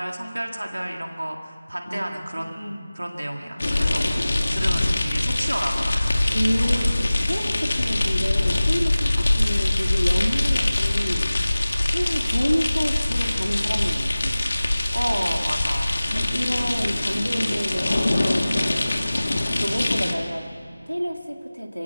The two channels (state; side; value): inverted; both; correlation -0.98